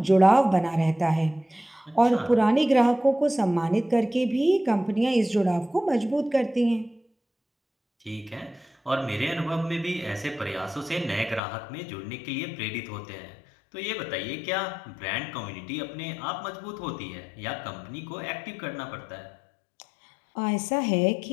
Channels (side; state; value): right; drops out; at 11.4 s